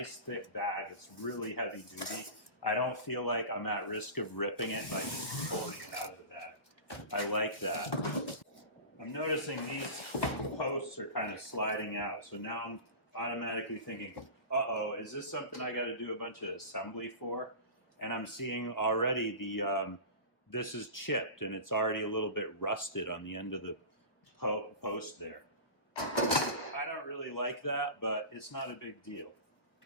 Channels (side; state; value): right; late; 1.1 ms